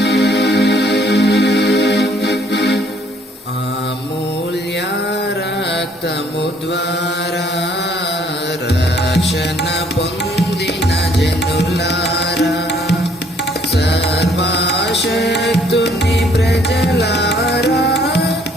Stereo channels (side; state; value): both; normal; correlation 0.63